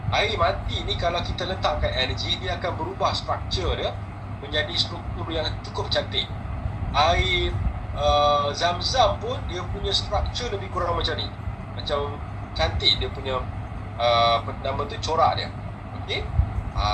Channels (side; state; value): both; identical; correlation 1.00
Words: Air mati ni kalau kita letakkan energi, dia akan berubah struktur dia menjadi struktur yang cukup cantik. Air Zam-Zam pun dia punya struktur lebih kurang macam ni, macam cantik dia punya nama tu, corak dia. Okey.